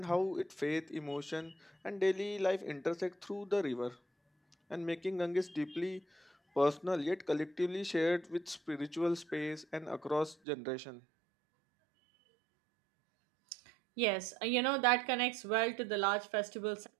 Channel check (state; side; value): drops out; left; at 10.4 s